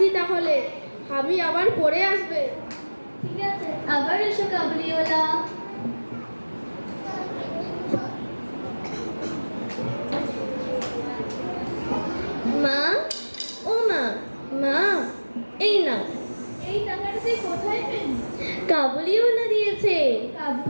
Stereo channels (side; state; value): both; inverted; correlation -1.00